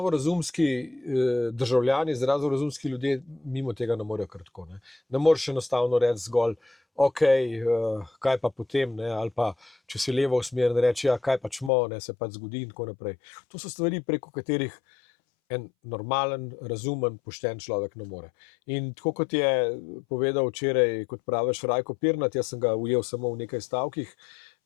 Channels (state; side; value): drops out; right; at 11.7 s